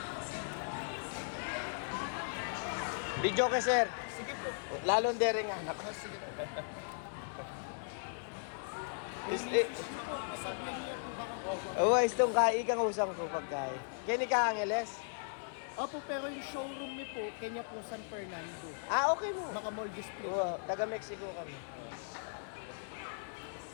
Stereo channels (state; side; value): silent; right; 53 dB below the other